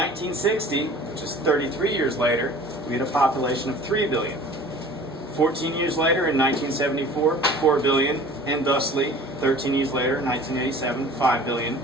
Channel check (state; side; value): normal; both; correlation 0.45